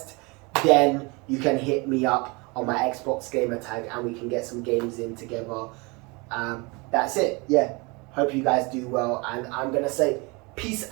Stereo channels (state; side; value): quieter; left; 27.8 dB